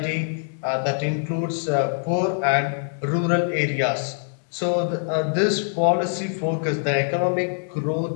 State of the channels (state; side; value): silent; right; digital silence